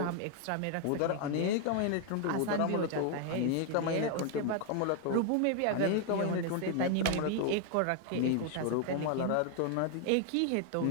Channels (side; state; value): both; different; correlation 0.00